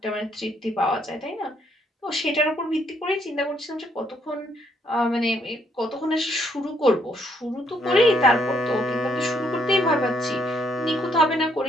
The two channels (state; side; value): normal; both; correlation 0.71